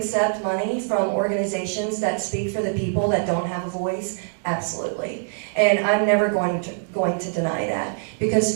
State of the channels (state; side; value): silent; left; 63 dB below the other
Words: money from organizations that speak for the people that don't have a voice? Absolutely. And I'm never going to deny that.